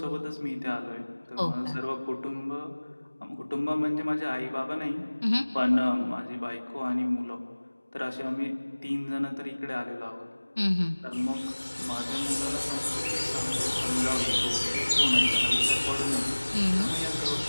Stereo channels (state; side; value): inverted; both; correlation -1.00